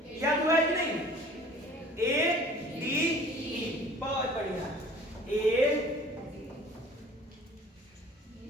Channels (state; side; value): normal; both; correlation 0.49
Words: याद हुआ है कि नहीं? ADE, बहुत बढ़िया,